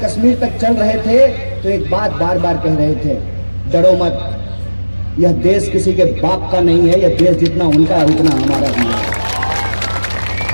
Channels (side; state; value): both; inverted; correlation -1.00